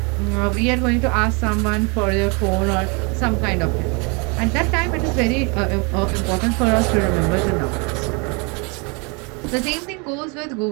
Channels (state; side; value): quieter; left; 31.7 dB